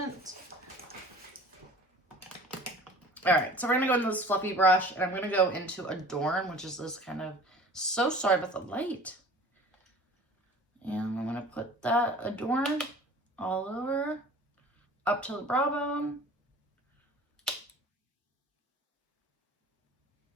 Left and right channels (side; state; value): both; normal; correlation 0.44